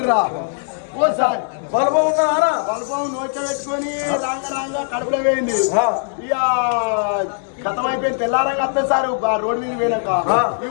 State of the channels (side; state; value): right; silent; digital silence